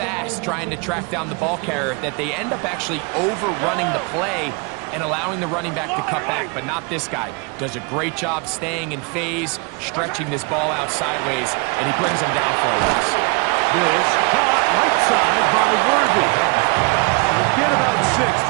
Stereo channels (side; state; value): left; quieter; 31.1 dB